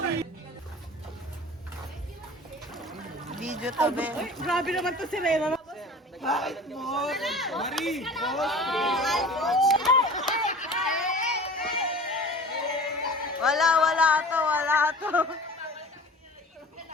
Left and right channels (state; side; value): normal; both; correlation 0.40